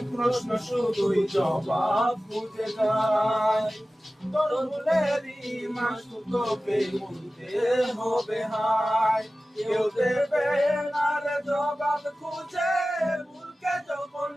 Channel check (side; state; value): both; normal; correlation 0.96